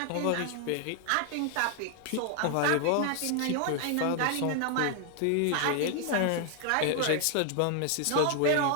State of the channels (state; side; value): different; both; correlation 0.00